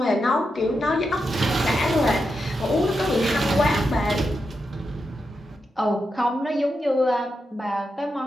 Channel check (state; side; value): normal; both; correlation 0.87